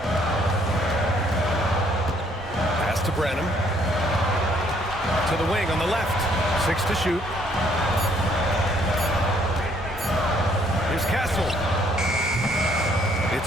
Pass to Branham. To the wing on the left. 6 to shoot. Here's Castle. It's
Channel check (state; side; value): normal; both; correlation 0.66